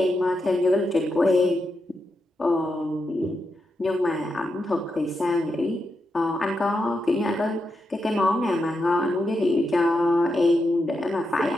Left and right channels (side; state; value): both; normal; correlation 0.85